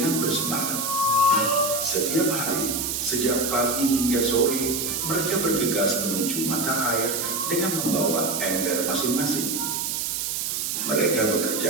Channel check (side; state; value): right; noise; hiss, 1 dB below the sound